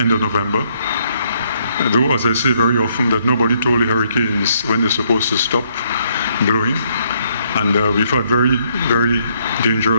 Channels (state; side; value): inverted; both; correlation -0.71